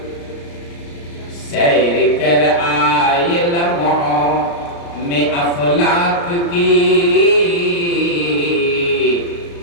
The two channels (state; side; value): late; right; 34 ms